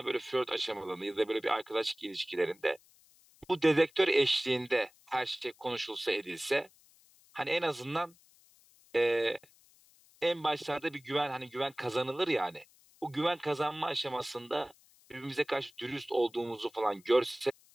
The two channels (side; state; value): left; noise; hiss, 29 dB below the sound